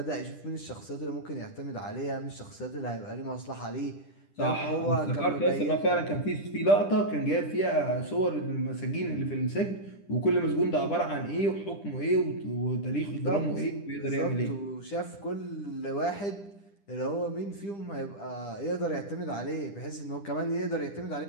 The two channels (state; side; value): late; right; 10 ms